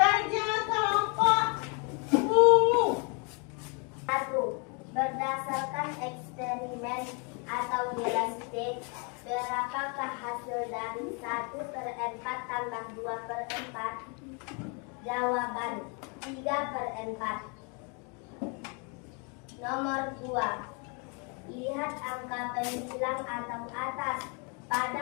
kelompok ungu. 1. Berdasarkan eksperimen atau gelas C, berapakah hasil dari 1/4 tambah 2/4? Jawaban 3/4. Nomor 2. Lihat angka pembilang atau atas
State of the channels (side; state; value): right; quieter; 35.0 dB